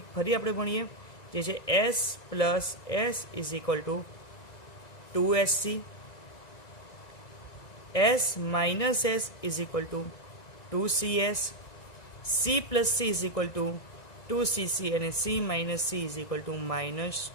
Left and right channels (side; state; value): right; late; 1.9 ms